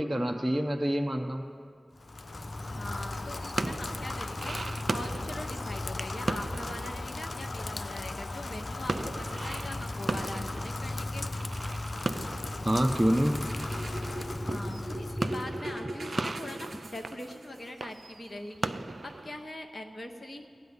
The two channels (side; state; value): both; normal; correlation 0.96